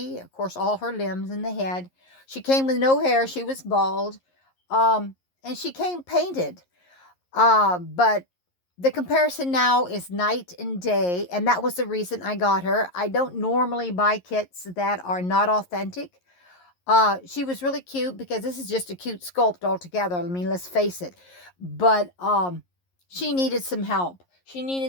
of course, all her limbs and the head. She came with no hair. She was bald. And she came painted. But the comparison now is night and day, and that was the reason I got her. I don't normally buy kits that are not authentic. She was really cute because this is just a cute sculpt altogether. I mean, let's face it. But she needed some help. She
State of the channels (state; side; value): late; right; 11 ms